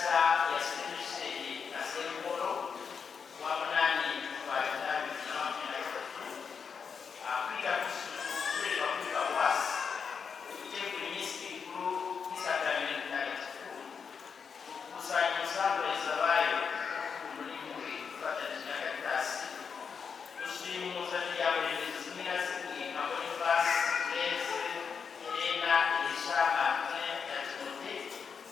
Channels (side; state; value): right; quieter; 6.2 dB